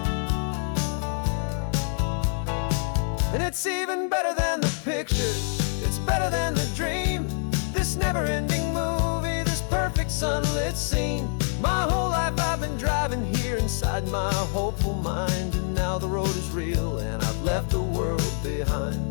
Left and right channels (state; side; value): silent; right; digital silence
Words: And it's even better than the pictures, it's better than the dream, this never-ending movie, this perfect sunlit scene. My whole life I've been driving here inside my hopeful mind, and now the road is real and I've left the world